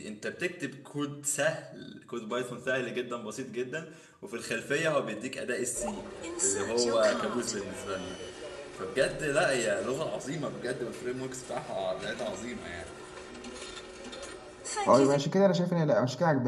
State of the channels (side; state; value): both; identical; correlation 1.00